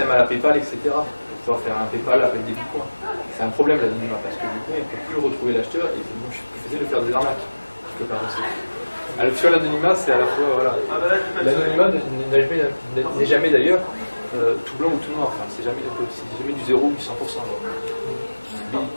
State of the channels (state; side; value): inverted; both; correlation -1.00